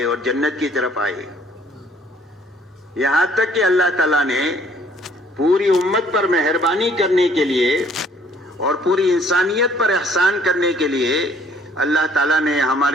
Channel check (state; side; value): normal; both; correlation 0.60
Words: اور جنت کی طرف آئے، یہاں تک کہ اللہ تعالیٰ نے پوری امت پر مہربانی کرنے کے لیے اور پوری انسانیت پر احسان کرنے کے لیے اللہ تعالیٰ نے